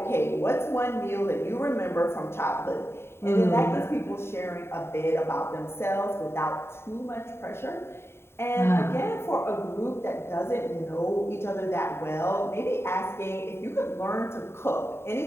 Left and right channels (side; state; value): right; late; 0.12 ms